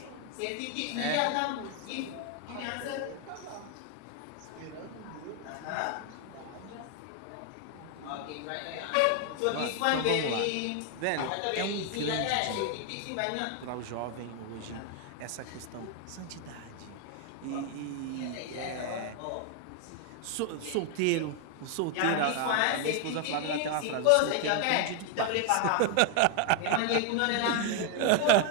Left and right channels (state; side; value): different; both; correlation 0.00